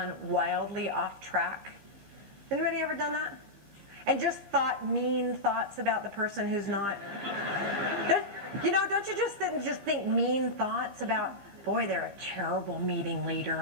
wildly off track? Anybody ever done that? And just thought mean thoughts about the person who's not? Don't you just think mean thoughts about, boy, they're a terrible meeting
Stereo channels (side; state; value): left; late; 15 ms